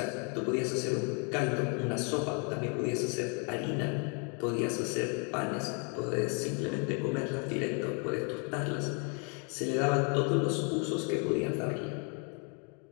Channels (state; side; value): quieter; right; 36.8 dB